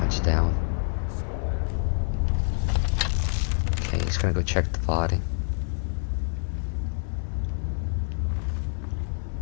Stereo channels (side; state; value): right; silent; 60 dB below the other